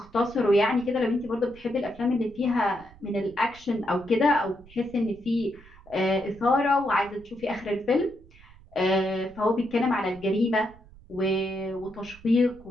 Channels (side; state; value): right; noise; rumble, 23 dB below the sound